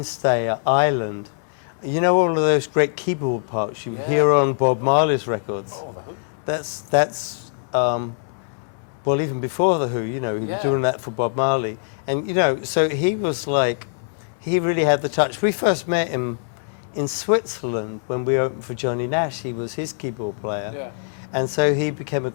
at Ireland. You know all of those great keyboard parts you hear on Bob Marley's records? Oh, The Who. That's well, even before The Who, you know, he was doing that for Bob Marley. And, you know, so he was like, he really had the touch. We first met him in Switzerland when we opened for Johnny Nash. He was his keyboard player. Yeah. And so he became a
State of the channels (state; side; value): silent; right; 64 dB below the other